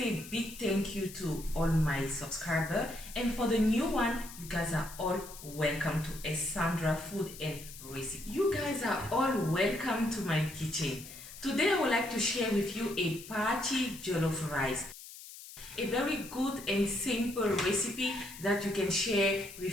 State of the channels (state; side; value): noise; left; hiss, 15 dB below the sound